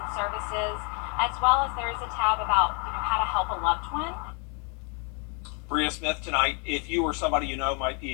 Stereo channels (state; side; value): quieter; right; 35.4 dB